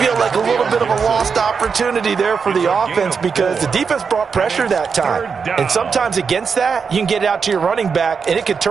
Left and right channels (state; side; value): quieter; left; 5.8 dB